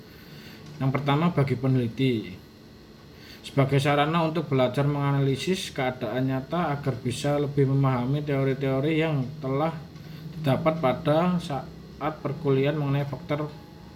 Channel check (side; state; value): both; identical; correlation 1.00